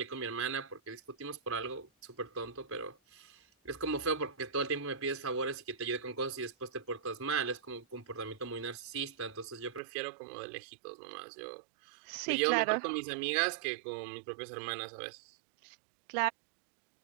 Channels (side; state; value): left; drops out; at 9.8 s